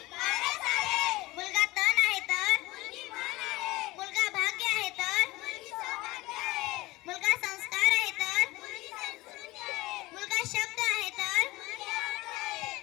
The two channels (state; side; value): quieter; right; 20.2 dB